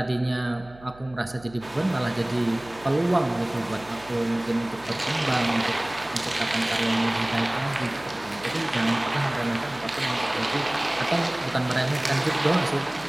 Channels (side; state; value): right; noise; hum, 22 dB below the sound